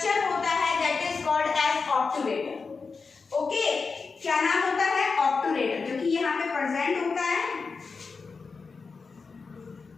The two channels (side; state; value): right; quieter; 4.7 dB